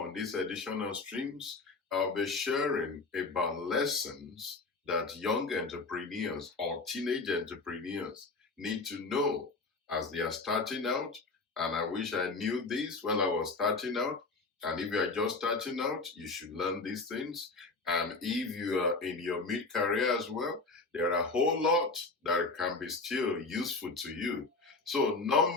this edition of Streams, I'll be sharing about lessons that young entrepreneurs or teenage entrepreneurs need to know as they are starting out. And I wish I knew this when I was starting out. And if you are just starting out, you should learn these things. And if you are in your mid-career as well, there are a whole lot that can be still useful to you. So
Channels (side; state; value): right; quieter; 3.8 dB